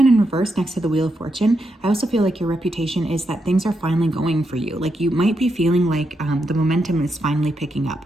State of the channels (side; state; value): both; normal; correlation 0.83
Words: in reverse next to the Wheel of Fortune, I also feel like your reputation is that things are finally going for you. Like you might be feeling like the momentum is finally picking up.